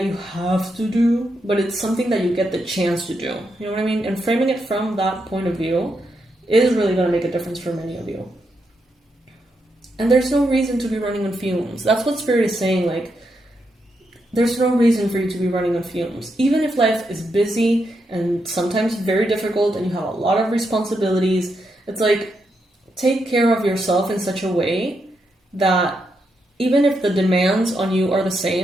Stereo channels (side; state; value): both; normal; correlation 0.82